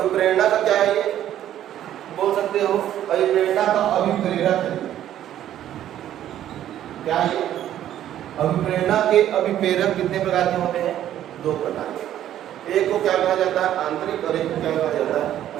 का क्या है? ये बोल सकते हो अभिप्रेरणा का अभिप्रेरक है। क्या है? अभिप्रेरणा के अभिप्रेरक कितने प्रकार के होते हैं? दो प्रकार के। एक को क्या कहा जाता है? आंतरिक, और एक को क्या कहा जाता है?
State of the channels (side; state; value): left; quieter; 11.6 dB